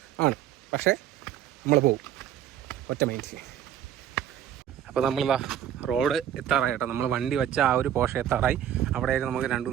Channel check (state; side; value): quieter; left; 10.4 dB